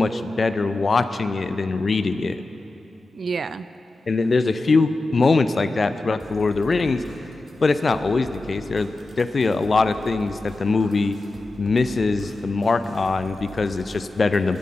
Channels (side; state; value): right; quieter; 3.2 dB